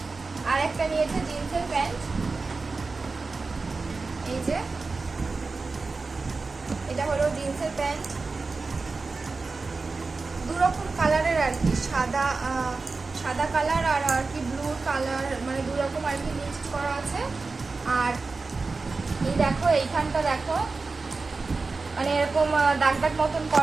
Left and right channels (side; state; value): left; quieter; 4.0 dB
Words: আর একটা নিয়েছে জিন্সের প্যান্ট, এই যে এটা হলো জিন্সের প্যান্ট, দু রকম কালারের আর কি, সাদা কালার আর কি ব্লু কালার, দু রকম আর কি মিক্সড করা আছে। আর এই দেখো এইখানটা দেখো এরকম দাগ দাগ মতন